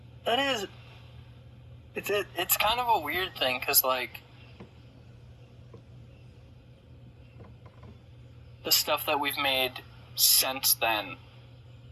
That is... It's kind of a weird thing, because, like, the stuff that we've made since then,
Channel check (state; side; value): identical; both; correlation 1.00